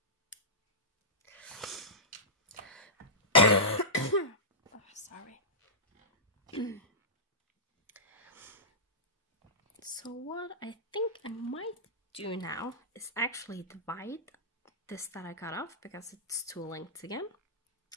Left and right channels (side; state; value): both; normal; correlation -0.15